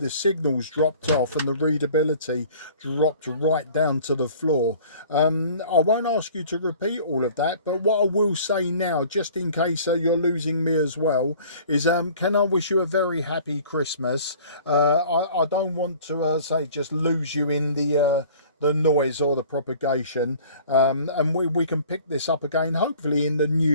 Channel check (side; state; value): both; inverted; correlation -0.49